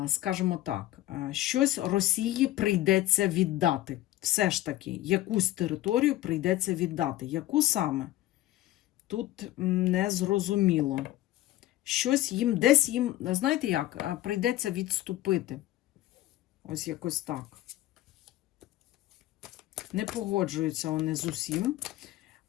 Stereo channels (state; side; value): quieter; right; 15.5 dB